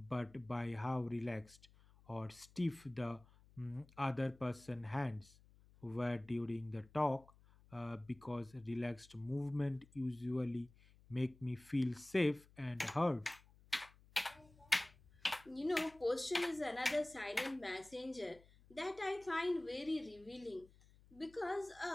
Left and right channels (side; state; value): left; noise; hum, 25 dB below the sound